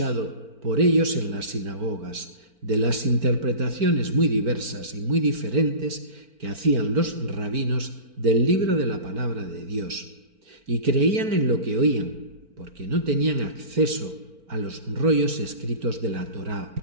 por ellos en las sinagogas, de las interpretaciones muy diversas y muy diferentes que hacían los rabinos del libro de la palabra de Dios, y creían en lo que oían, porque no tenían acceso a los rollos escritos de la Torá.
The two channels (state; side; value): late; left; 4.4 ms